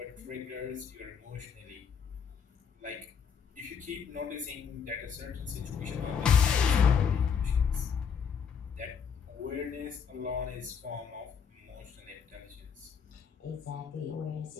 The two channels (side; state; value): right; quieter; 6.8 dB